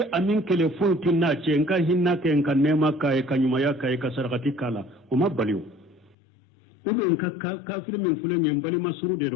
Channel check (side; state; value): right; drops out; at 6.2 s